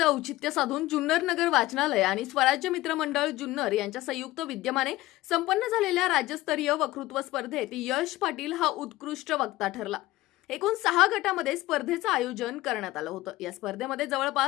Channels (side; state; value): right; quieter; 17.5 dB